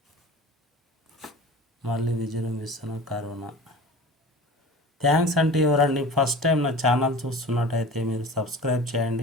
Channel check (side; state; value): both; normal; correlation 0.37